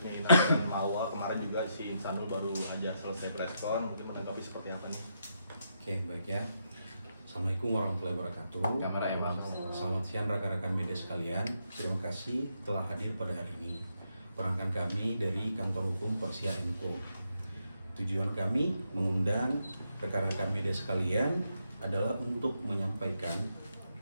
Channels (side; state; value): both; inverted; correlation -0.80